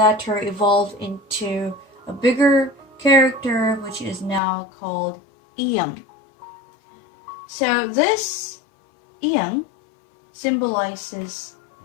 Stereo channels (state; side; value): drops out; right; at 4.4 s